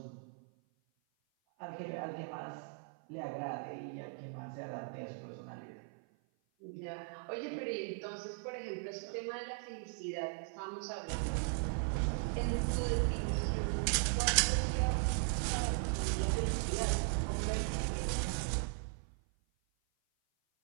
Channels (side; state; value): left; silent; 52 dB below the other